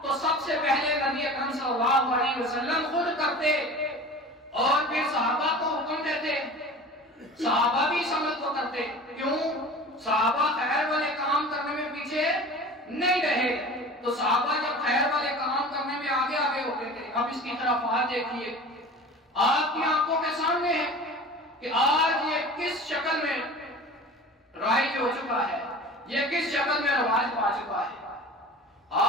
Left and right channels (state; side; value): normal; both; correlation 0.38